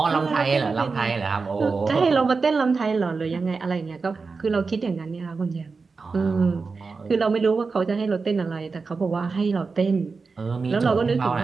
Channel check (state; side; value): quieter; left; 4.5 dB